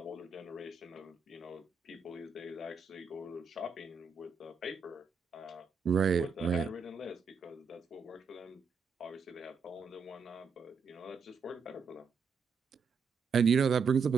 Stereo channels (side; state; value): left; quieter; 5.3 dB